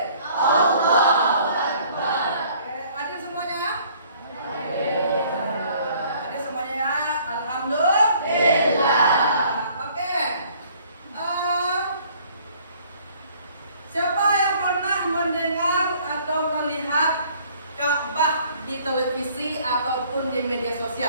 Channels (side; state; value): both; inverted; correlation -0.57